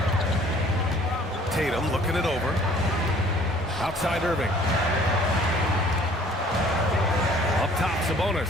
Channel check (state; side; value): normal; both; correlation 0.54